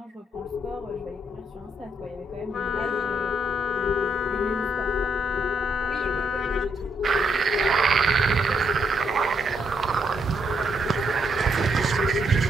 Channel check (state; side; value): normal; both; correlation 0.76